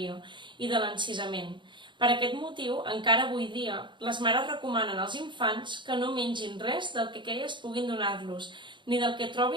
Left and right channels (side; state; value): left; late; 0.23 ms